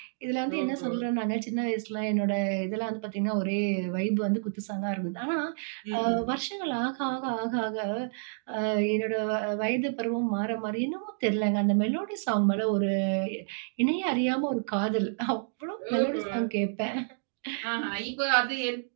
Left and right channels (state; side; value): silent; left; digital silence